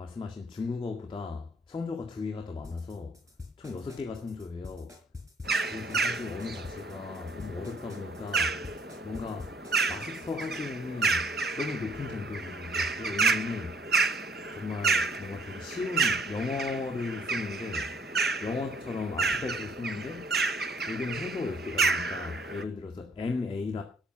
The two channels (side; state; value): both; normal; correlation 0.62